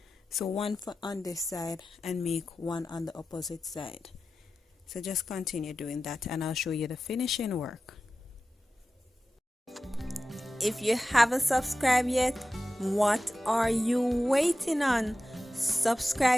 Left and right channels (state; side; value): normal; both; correlation 0.94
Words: So one on this side and make one on the opposite side. So just continue doing that and I'll show you the finishing work. If you haven't subscribed yet, what are you waiting on?